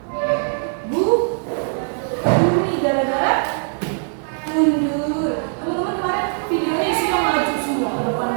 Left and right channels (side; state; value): left; silent; 58 dB below the other